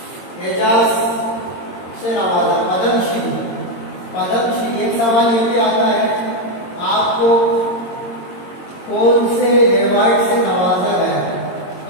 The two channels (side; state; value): right; late; 22 ms